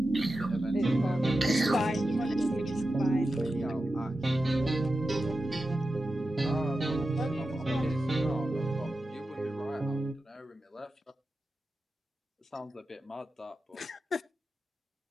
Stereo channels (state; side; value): normal; both; correlation 0.91